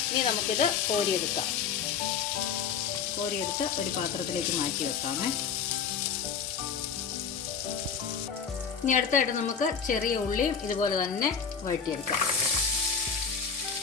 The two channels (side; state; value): right; quieter; 6.6 dB